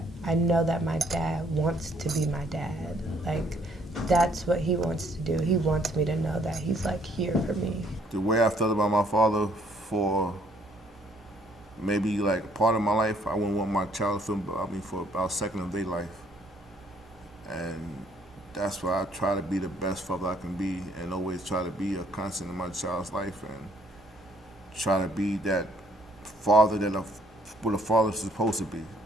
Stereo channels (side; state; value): both; normal; correlation 0.65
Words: I know that my dad wants to be my dad. Like, that's what he wants to do. He wants me to know that he's like here for me. The way I felt about my father for maybe like part of my life, I wouldn't want my child to feel about me for about a second of their life. And that's why I try to be the best father I can be, and always try to be a constant in my child's life, and try to be that father what a father's supposed to be.